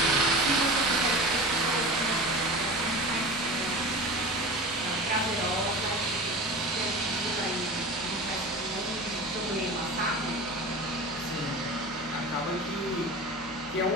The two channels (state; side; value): normal; both; correlation 0.32